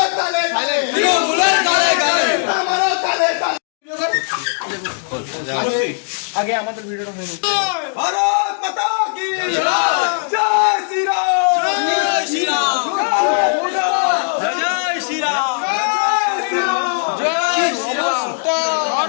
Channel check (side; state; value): right; silent; digital silence